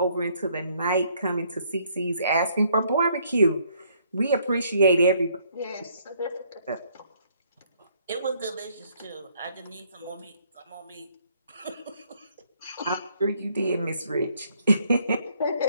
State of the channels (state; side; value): inverted; both; correlation -0.67